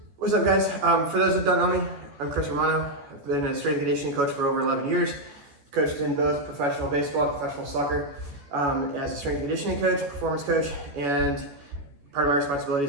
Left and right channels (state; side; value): late; left; 14 ms